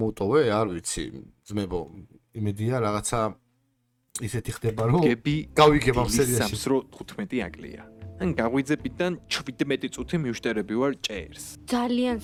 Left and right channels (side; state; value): both; identical; correlation 1.00